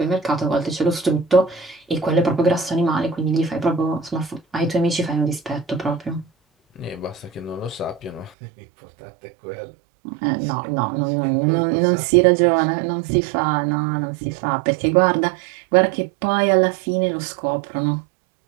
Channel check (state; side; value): drops out; left; at 8.3 s